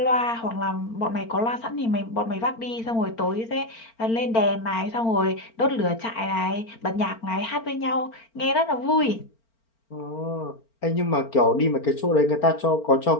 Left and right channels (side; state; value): right; late; 4.4 ms